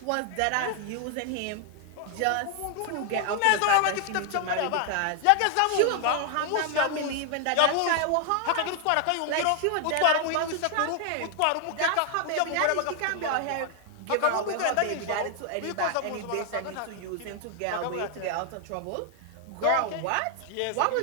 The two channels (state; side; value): different; both; correlation 0.00